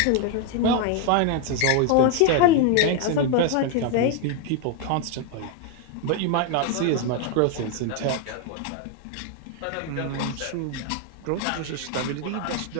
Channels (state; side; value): different; both; correlation 0.01